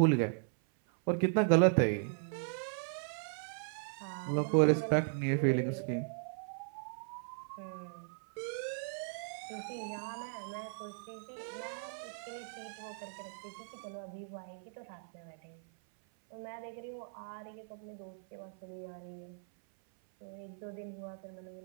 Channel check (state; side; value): silent; left; 53 dB below the other